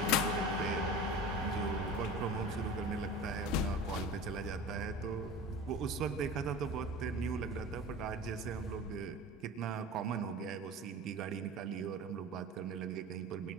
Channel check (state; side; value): normal; both; correlation 0.34